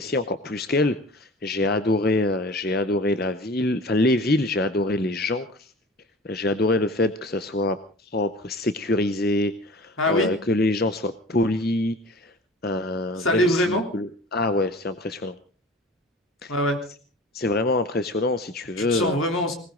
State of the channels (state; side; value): normal; both; correlation 0.40